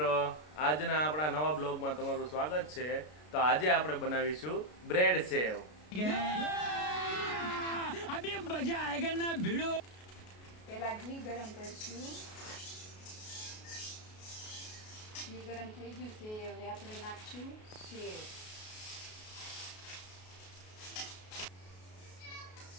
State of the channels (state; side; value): late; right; 33 ms